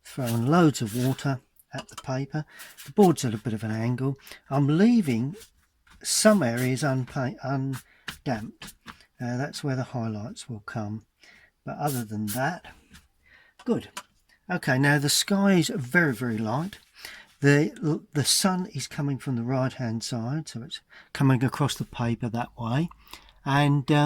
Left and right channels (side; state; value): both; identical; correlation 1.00